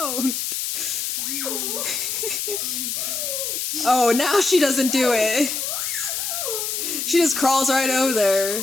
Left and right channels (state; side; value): noise; left; hiss, 2 dB below the sound